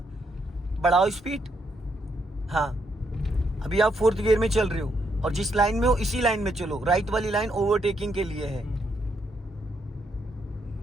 बढ़ाओ स्पीड। हाँ, अभी आप 4th गियर में चल रहे हो और जिस लाइन में हो इसी लाइन में चलो, राइट वाली लाइन ओवरटेकिंग के लिए है।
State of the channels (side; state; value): both; normal; correlation 0.76